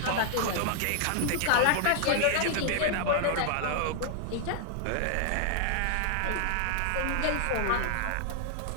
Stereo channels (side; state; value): both; different; correlation -0.01